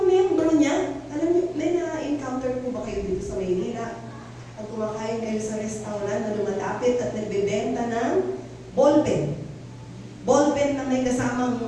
membro niya, alam niyo, may na-encounter po ba kayo dito sa Maynila? Ang kumakain kayo sa restaurant na lumalapit at nagbebenta ng ballpen. Ballpen na may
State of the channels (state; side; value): identical; both; correlation 1.00